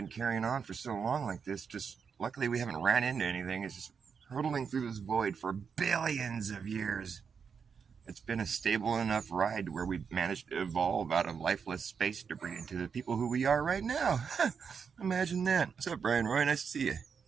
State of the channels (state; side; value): quieter; left; 6.3 dB